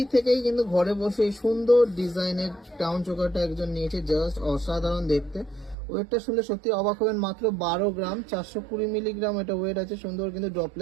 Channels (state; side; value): drops out; left; at 5.8 s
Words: থেকেই কিন্তু ঘরে বসে এই সুন্দর ডিজাইনের টাউন চোকারটা একজন নিয়েছে, জাস্ট অসাধারণ দেখতে। ওয়েটটা শুনলে সত্যি অবাক হবেন, মাত্র 12 গ্রাম 420 মিলিগ্রাম এটা ওয়েট আছে, সুন্দর কিন্তু